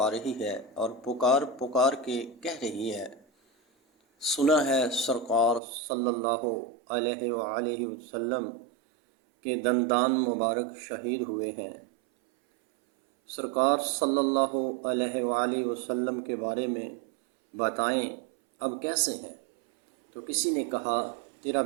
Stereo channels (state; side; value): drops out; left; at 5.6 s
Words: رہی ہے اور پکار پکار کے کہہ رہی ہے، سنا ہے سرکار صلی اللہ علیہ وآلہ وسلم کے دندان مبارک شہید ہوئے ہیں۔ سرکار صلی اللہ علیہ وآلہ وسلم کے بارے میں بتائیں، اب کیسے ہیں؟ تو کسی نے کہا، تیرا